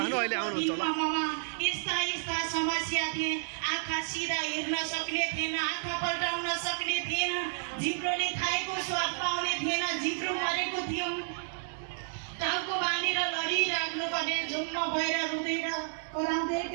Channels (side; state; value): left; silent; digital silence